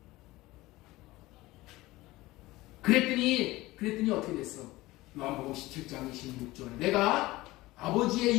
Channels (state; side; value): quieter; right; 19.0 dB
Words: 그랬더니 어떻게 됐어? 요한복음 17장 26절. 내가 아버지의